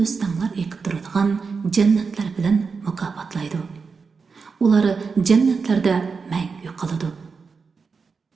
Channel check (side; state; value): left; quieter; 5.1 dB